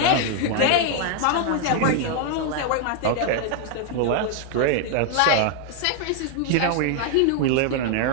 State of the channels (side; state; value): both; different; correlation 0.00